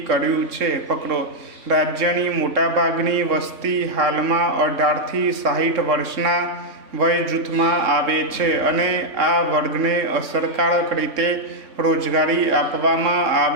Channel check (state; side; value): late; left; 3.6 ms